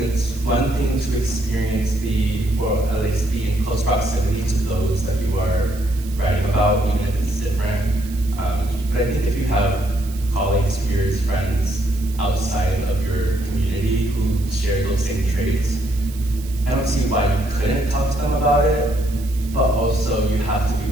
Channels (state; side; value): noise; right; hiss, 18 dB below the sound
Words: it's one thing to experience or at least be in close proximity to those that you are writing about, even if it's different. But I think if you have colleagues, peers, friends outside of your community who share those same traits, I don't see why you couldn't talk to them about it, but also you have to